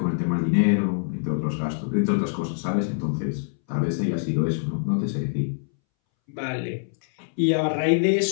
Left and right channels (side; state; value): right; silent; 62 dB below the other